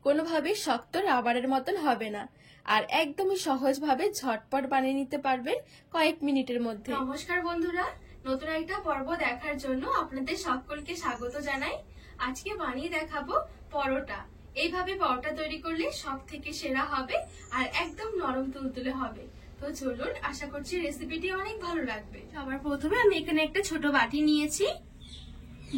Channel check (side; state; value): both; identical; correlation 1.00